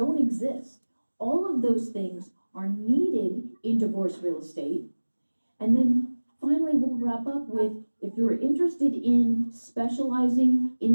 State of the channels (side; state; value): both; inverted; correlation -1.00